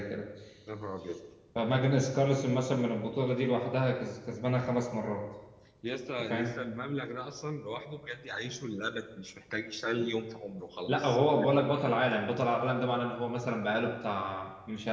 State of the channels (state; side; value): identical; both; correlation 1.00